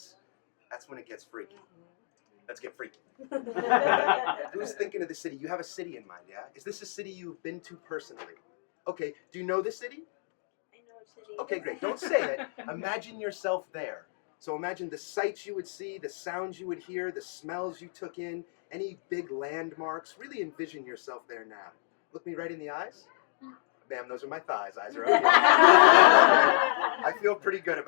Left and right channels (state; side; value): silent; right; 58 dB below the other